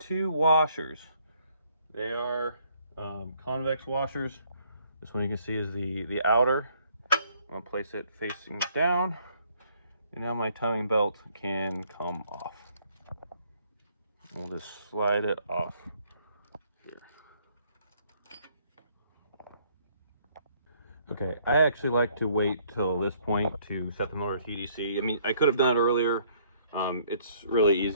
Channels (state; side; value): inverted; both; correlation -0.65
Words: washers. They are convex washers. This one you can see is the outer. I'm gonna place it facing down, and now my timing belt can come off. We'll just slide it off here. Okay, I actually like to wait till this point to set the motor to TDC. I mean, I could have done it earlier. It's really